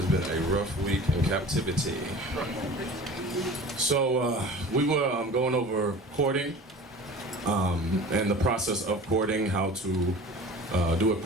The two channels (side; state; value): both; normal; correlation 0.40